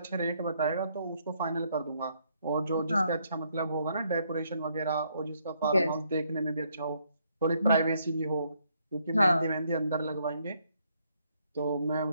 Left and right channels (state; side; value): inverted; both; correlation -0.72